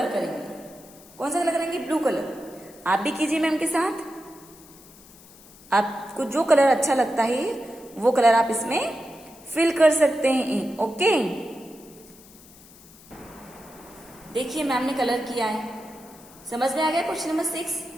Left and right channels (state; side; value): noise; left; hiss, 23 dB below the sound